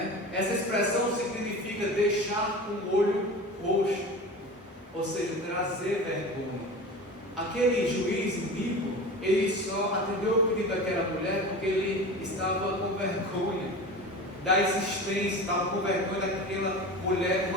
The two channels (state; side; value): normal; both; correlation 0.32